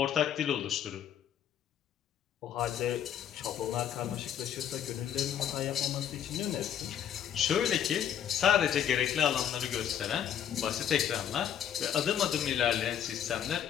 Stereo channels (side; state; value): right; quieter; 9.6 dB